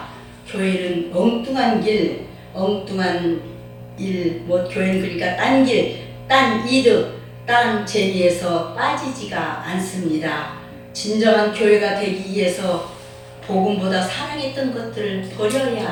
교회는 엉뚱한 길, 엉뚱한 일, 교회는 그러니까 딴 길, 딴 이득, 딴 재미에서 빠지지가 않습니다. 진정한 교회가 되기 위해서 복음보다 사랑했던 것들을 버려야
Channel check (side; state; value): both; identical; correlation 1.00